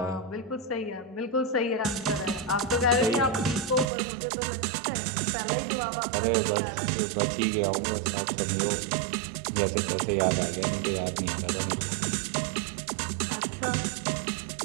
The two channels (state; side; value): drops out; left; at 3.9 s